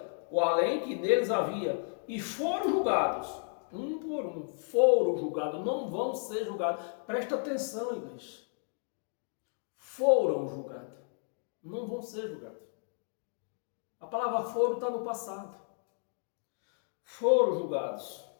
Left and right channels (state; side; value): silent; right; 56 dB below the other